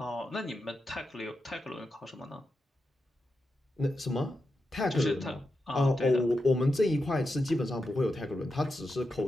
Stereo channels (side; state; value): both; normal; correlation 0.88